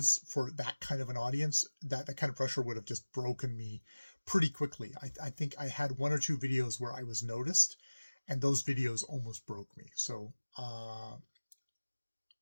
for that kind of an audience, that kind of pressure would have just broken me pretty quickly. I think I had one or two videos where I was noticed, and those videos almost broke me. So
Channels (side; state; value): both; inverted; correlation -1.00